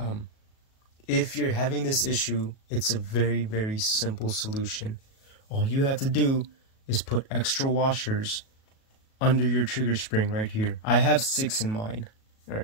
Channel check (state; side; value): late; right; 37 ms